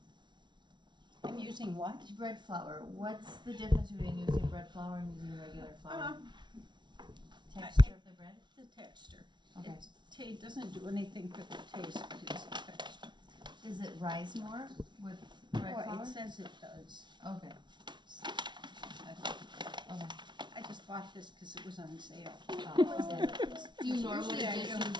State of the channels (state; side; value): late; left; 0.22 ms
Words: I'm using what? Bread flour. What's the difference between using bread flour and using regular flour? Texture of the bread? The texture. Okay. It doesn't do anything for the taste, but it's the texture. Does it rise more with bread Well, flour? it says it does. Okay. I don't- Okay. I just bought this because it was on sale. Do you normally Usually I just don't.